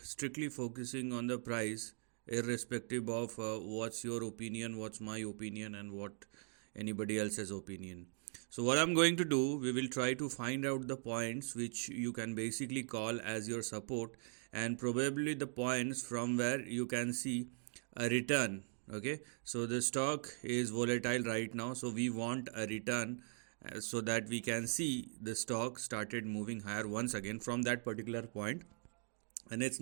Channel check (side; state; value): left; silent; 51 dB below the other